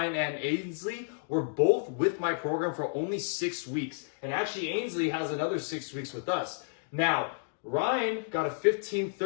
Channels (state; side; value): silent; right; digital silence